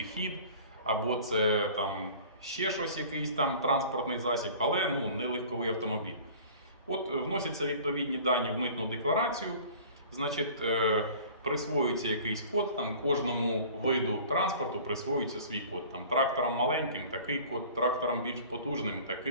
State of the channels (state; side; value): inverted; both; correlation -0.45